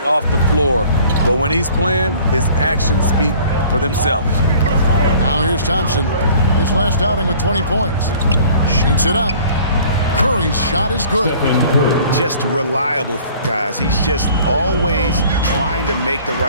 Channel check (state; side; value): inverted; both; correlation -0.51